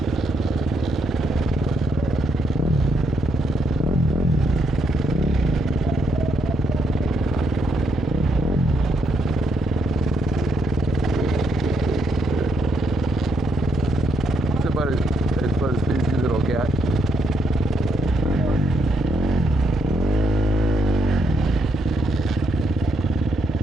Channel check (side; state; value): both; normal; correlation 0.75